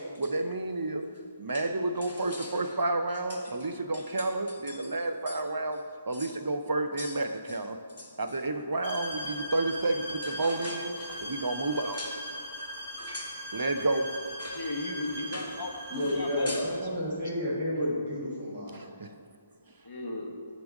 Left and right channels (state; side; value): inverted; both; correlation -0.76